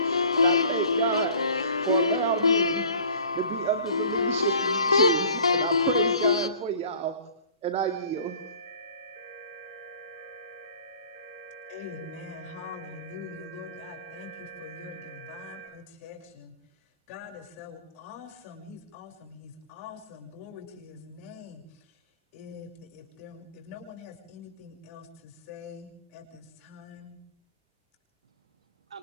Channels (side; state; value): both; inverted; correlation -0.49